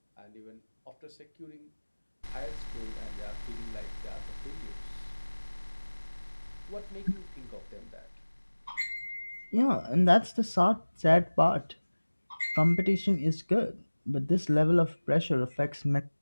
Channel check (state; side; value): inverted; both; correlation -1.00